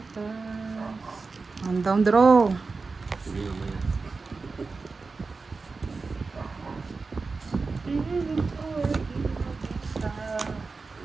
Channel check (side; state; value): left; quieter; 4.2 dB